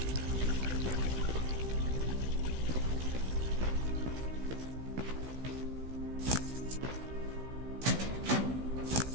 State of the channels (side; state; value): left; late; 16 ms